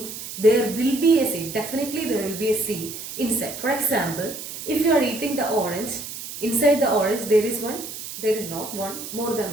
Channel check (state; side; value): noise; right; hiss, 10 dB below the sound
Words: there will be a seed. Definitely there will be a seed inside. For example, if you are eating the orange, inside the orange there is not one, more